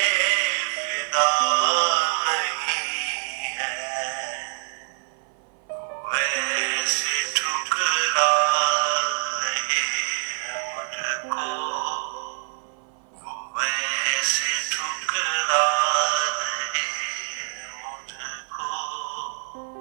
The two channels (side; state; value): left; silent; 55 dB below the other